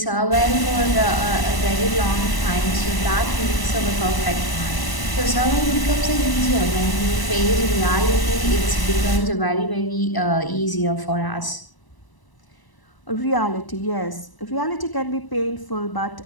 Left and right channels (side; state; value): right; late; 1.0 ms